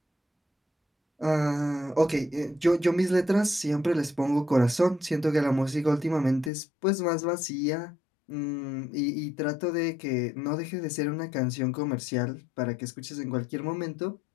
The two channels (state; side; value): drops out; right; at 6.5 s